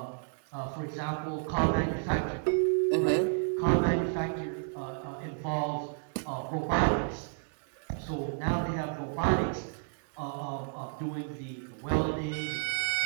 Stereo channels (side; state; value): left; silent; digital silence